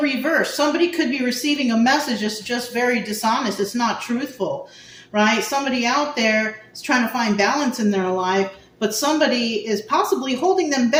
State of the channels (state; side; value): identical; both; correlation 1.00